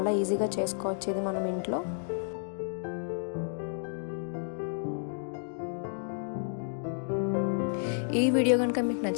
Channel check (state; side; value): silent; right; digital silence